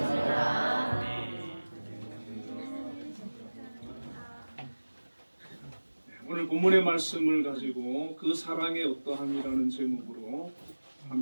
오늘 본문의 말씀을 가지고 그 사랑의 어떠함이라는 제목으로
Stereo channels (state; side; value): inverted; both; correlation -1.00